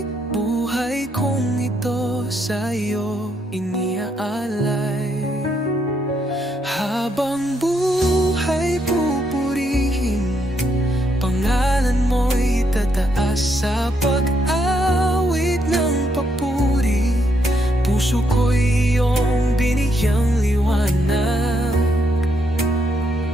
Buhay kong ito sa iyo iniaalay. Habang buhay pupurihin, pangalan mo'y tataas sa pag-awit ng papuri. Puso ko'y iyong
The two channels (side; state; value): both; normal; correlation 0.76